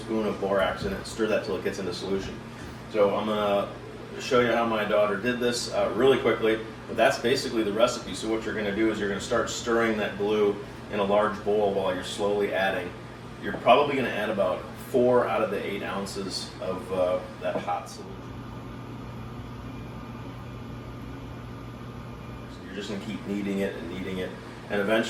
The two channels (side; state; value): both; identical; correlation 1.00